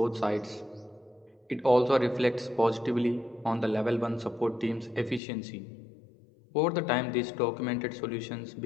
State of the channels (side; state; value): right; drops out; at 5.2 s